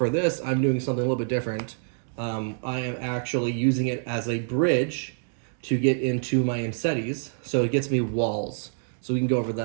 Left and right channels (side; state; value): left; silent; digital silence